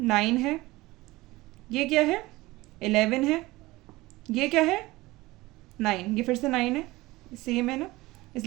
9 है, ये क्या है 11 है, ये क्या है 9, ये फिर से 9 है, सेम है ना,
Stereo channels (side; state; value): left; quieter; 19.9 dB